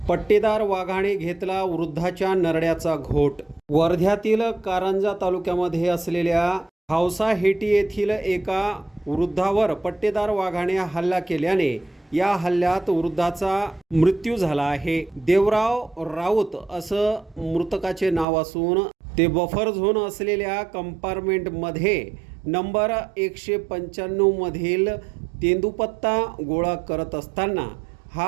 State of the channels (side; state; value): left; drops out; at 18.2 s